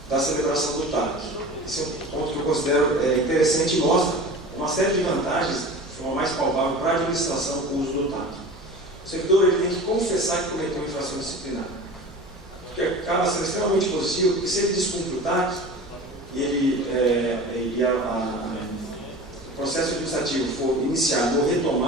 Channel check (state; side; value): normal; both; correlation 0.36